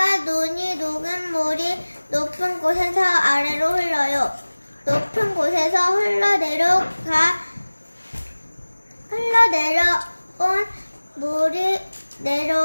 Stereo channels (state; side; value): inverted; both; correlation -1.00